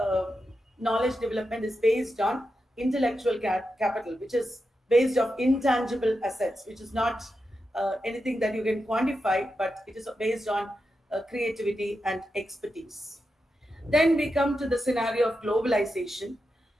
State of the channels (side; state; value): both; normal; correlation 0.88